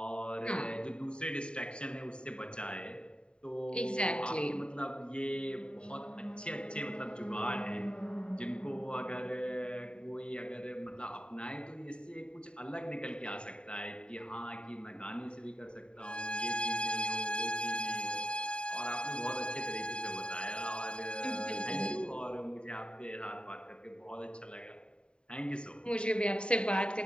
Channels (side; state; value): right; late; 0.052 ms